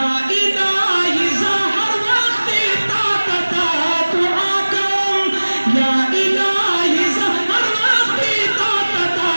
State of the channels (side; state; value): both; inverted; correlation -1.00